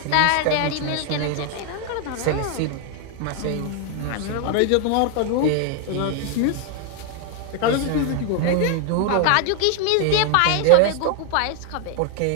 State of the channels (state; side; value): different; both; correlation 0.00